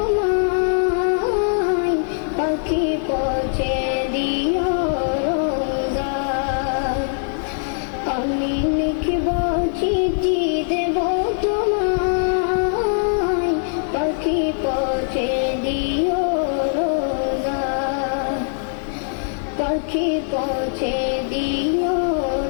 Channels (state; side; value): silent; right; 65 dB below the other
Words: পাখি পৌঁছে দিও রোজায়। আমি লিখব চিঠি দেব তোমায়, পাখি পৌঁছে দিও রোজায়। পাখি পৌঁছে দিও